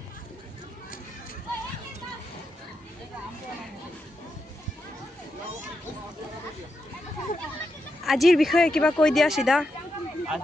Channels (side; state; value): both; normal; correlation 0.85